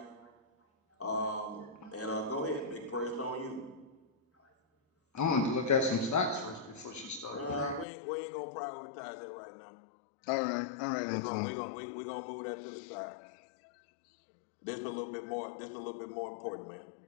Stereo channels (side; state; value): right; drops out; at 7.9 s